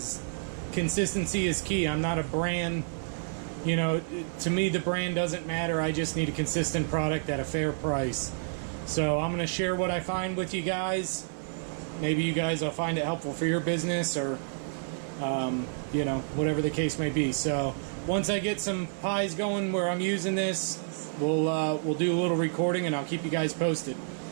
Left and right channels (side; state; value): left; silent; 58 dB below the other